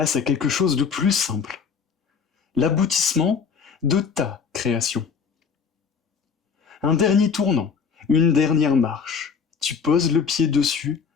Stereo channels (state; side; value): quieter; right; 6.1 dB